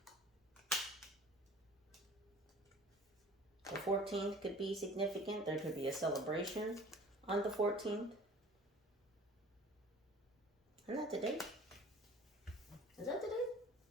The 14th could be significant. There could be a celebration on the 14th. Isn't that today? Is that today?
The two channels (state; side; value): normal; both; correlation 0.46